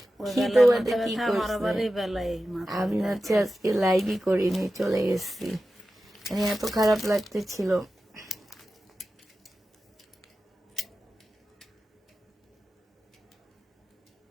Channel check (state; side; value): normal; both; correlation 0.93